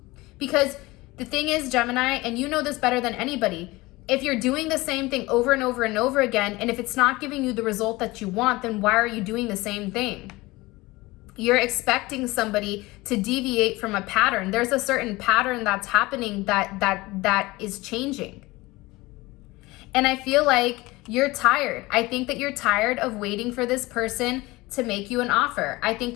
Because the thing is, Gemini, and you know this better than anybody, if you're doing the same thing over and over and over again, and if it's not giving you the result that you want, then why are you doing the same thing? You're expecting somebody to deviate from a pattern. There's a certain pattern that's happening that is changing. And I feel like you're tired. I think that you're tired of waiting for this person to make you an offer. I think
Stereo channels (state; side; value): quieter; right; 21.0 dB